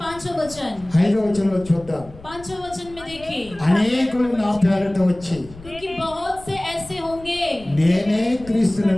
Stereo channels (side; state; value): left; noise; rumble, 19 dB below the sound